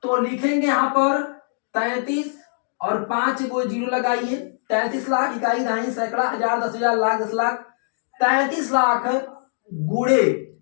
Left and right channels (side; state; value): right; silent; digital silence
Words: तो लिखेंगे यहाँ पर 33 और 5 को जीरो लगाइए। 33 लाख, इकाई, दहाई, सैकड़ा, हजार, 10,000, लाख, 10 लाख। 33 लाख गुड़े,